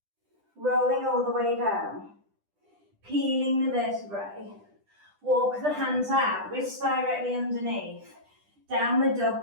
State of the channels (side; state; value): left; late; 10 ms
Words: Rolling all the way down. Peeling the vertebrae. Walk the hands out, wrists directly underneath. Downward